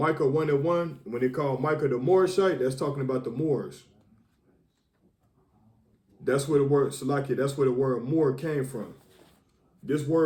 1:1, when they call Micah the Morishite, that's talking about the Moors. That's where the word Salakia, that's where the word Moor came from. This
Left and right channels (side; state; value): both; identical; correlation 1.00